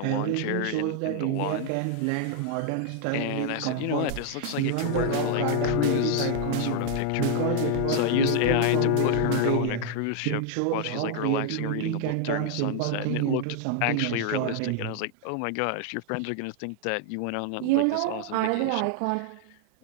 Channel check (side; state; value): both; different; correlation 0.00